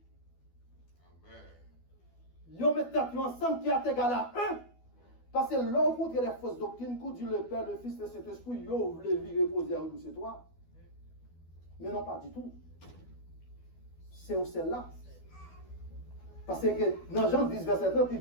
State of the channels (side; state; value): right; late; 12 ms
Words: ils mettent ensemble qui est égal à 1. Parce que l'on contre les fausses doctrines, quand Dieu le Père, le Fils, le Saint-Esprit, ils voulaient vivre reposer à nous, c'est toi. Mais non, pas du tout. C'est où celle-là. Parce que dans Jean 10, verset 30, il